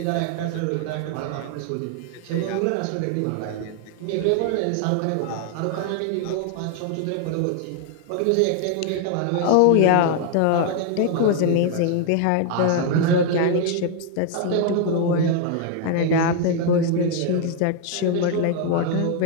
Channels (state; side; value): different; both; correlation 0.00